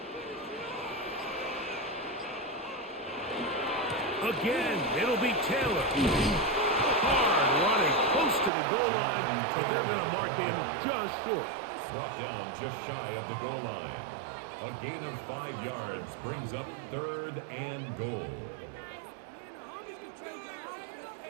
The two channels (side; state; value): left; drops out; at 8.5 s